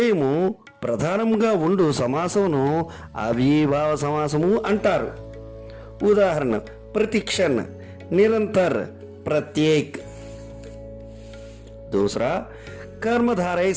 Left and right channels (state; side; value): identical; both; correlation 1.00